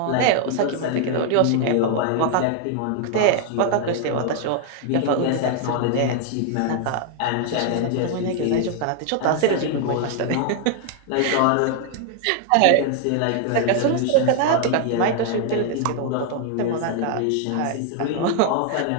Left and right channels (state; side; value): different; both; correlation 0.00